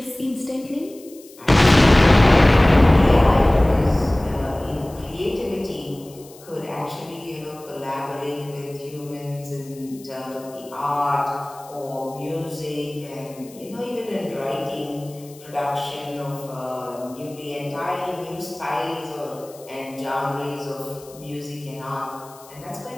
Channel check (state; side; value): noise; left; hiss, 23 dB below the sound